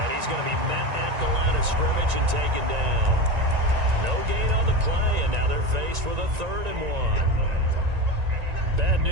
he's going to be met at the line of scrimmage and taken down. No gain on the play, and now they're faced with a 3rd and 1. Bad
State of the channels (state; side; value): late; left; 1.9 ms